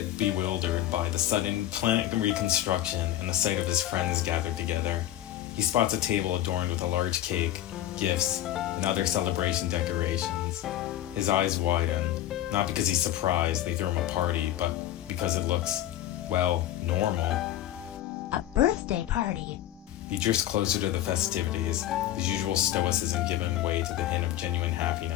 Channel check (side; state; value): right; quieter; 13.1 dB